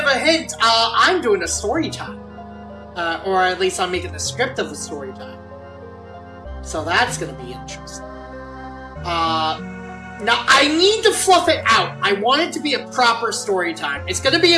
a hint. I'm doing a story time. Or at least I'm making the script of the story time. So that's gonna be interesting. Now, I need to fluff it out. I want it to be a proper story time. It's gonna be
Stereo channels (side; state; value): both; identical; correlation 1.00